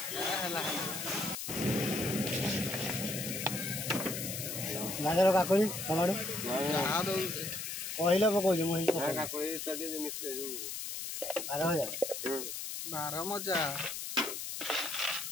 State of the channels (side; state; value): left; noise; hiss, 5 dB below the sound